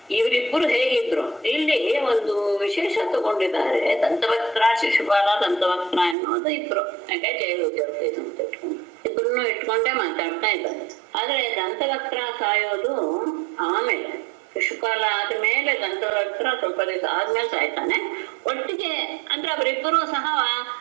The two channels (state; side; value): drops out; left; at 6.2 s